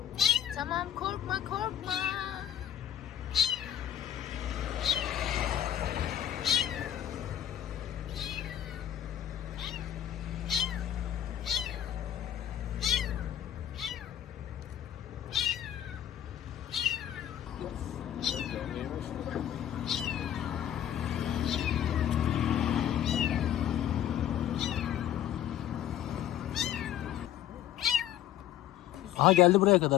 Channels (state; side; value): quieter; right; 11.0 dB